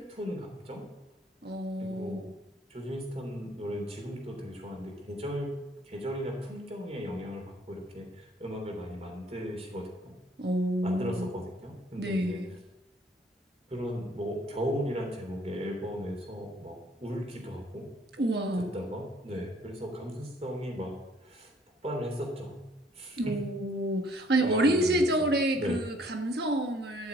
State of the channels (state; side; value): normal; both; correlation 0.61